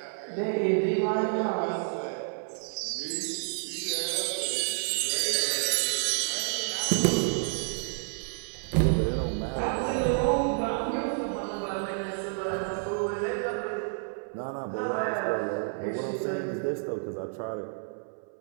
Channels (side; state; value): left; silent; 58 dB below the other